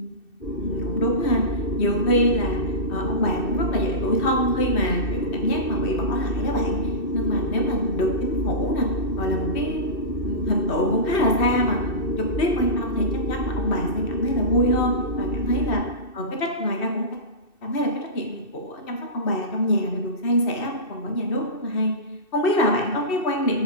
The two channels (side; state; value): right; late; 2.6 ms